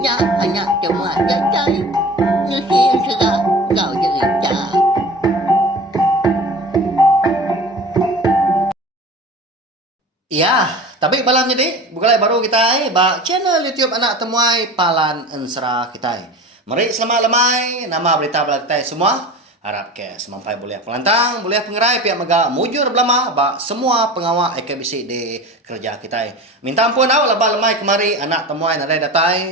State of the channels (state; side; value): normal; both; correlation 0.35